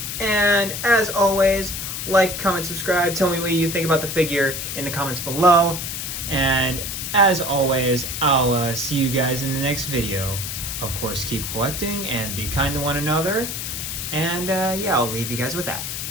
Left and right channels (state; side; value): noise; left; hiss, 5 dB below the sound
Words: And as always, like, comment, subscribe. Tell me what you think about the figure in the comments below. And as always, I'll see you guys in the next video. Of course, keep collecting and be kind to one another. And yeah, I'll leave you guys with that.